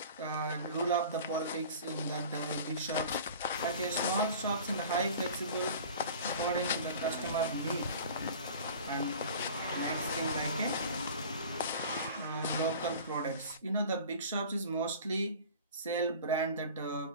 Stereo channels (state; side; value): inverted; both; correlation -0.41